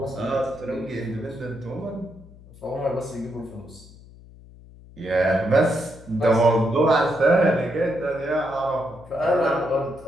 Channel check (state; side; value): noise; left; hum, 21 dB below the sound